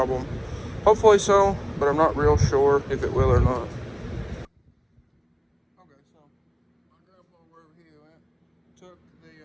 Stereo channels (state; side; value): identical; both; correlation 1.00